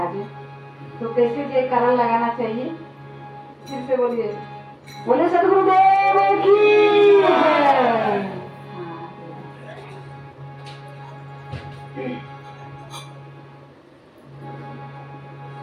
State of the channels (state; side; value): identical; both; correlation 1.00